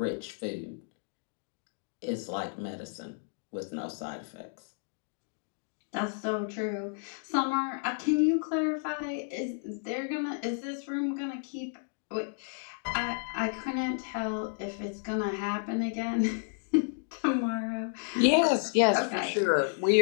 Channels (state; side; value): silent; right; digital silence